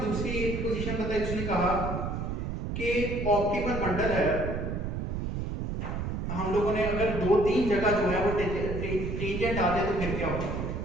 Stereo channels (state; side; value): noise; right; rumble, 3 dB below the sound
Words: दूसरी एक पोजीशन बताई, उसने कहा कि ऑप्टिमल बंडल है, हम लोगों ने अगर 2-3 जगह जो है वो टेंजेंट आ जाए तो फिर क्या होगा,